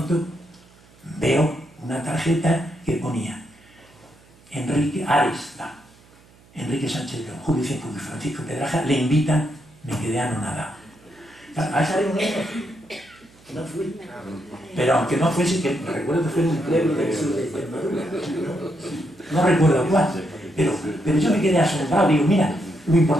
veo una tarjeta que ponía Enrique Ares, Enrique Sánchez León, Julio Cienfuegos y Francisco Pedraja le invitan. Me quedé anonadado. A esa reunión no fui, pero aunque no fuese, que recuerdo que fue en un pleno del sur de Extremadura, no recuerdo cuál, pero yo me quedé asombrado. Digo: mira lo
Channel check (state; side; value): noise; right; hum, 28 dB below the sound